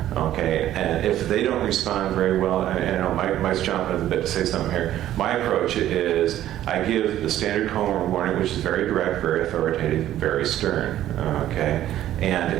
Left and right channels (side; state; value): left; quieter; 12.7 dB